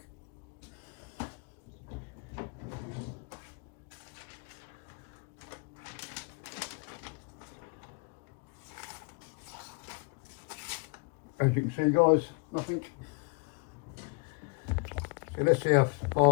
As you can see guys, nothing. So let's see how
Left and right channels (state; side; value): quieter; right; 32.5 dB